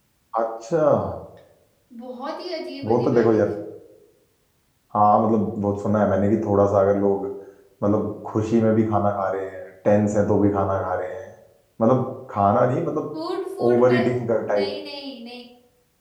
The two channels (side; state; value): both; identical; correlation 1.00